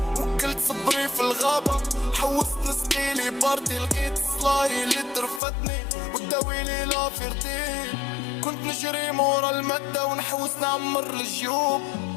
وكلت صبري في الغابة حوست نسقيلي باردي. لقيت صلاهي اللي ترفتني وداويلي لافيرتي. كنت نجري مورا المادة ونحوس نعمر الجيوب.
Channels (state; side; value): drops out; right; at 5.4 s